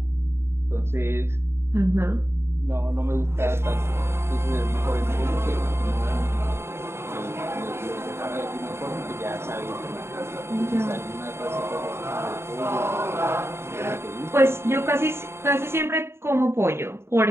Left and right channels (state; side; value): late; left; 0.12 ms